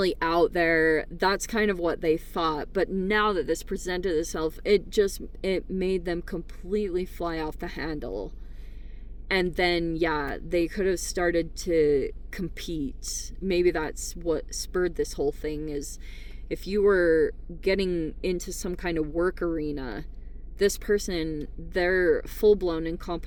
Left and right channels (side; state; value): both; identical; correlation 1.00